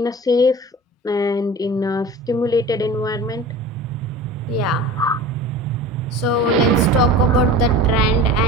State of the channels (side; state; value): both; normal; correlation 0.37